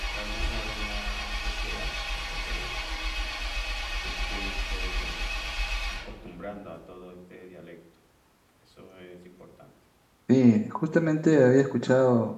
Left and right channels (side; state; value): both; identical; correlation 1.00